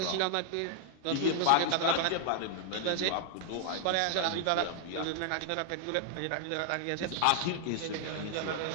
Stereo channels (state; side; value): different; both; correlation 0.00